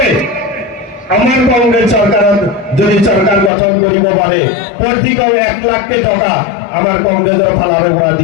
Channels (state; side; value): drops out; right; at 3.5 s